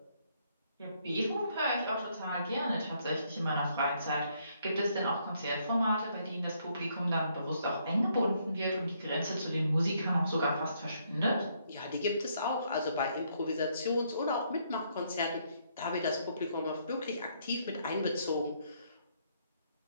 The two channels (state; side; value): inverted; both; correlation -0.71